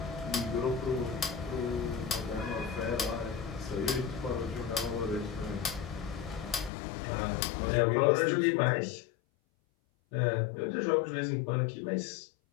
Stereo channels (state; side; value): drops out; right; at 6.7 s